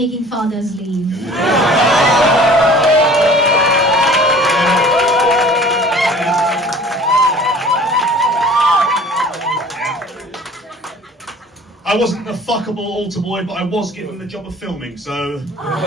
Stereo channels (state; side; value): normal; both; correlation 0.47